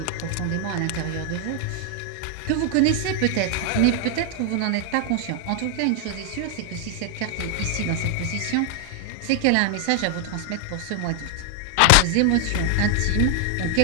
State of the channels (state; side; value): different; both; correlation 0.00